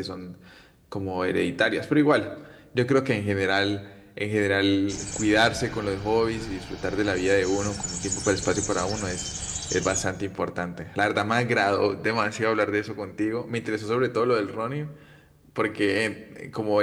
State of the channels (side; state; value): both; identical; correlation 1.00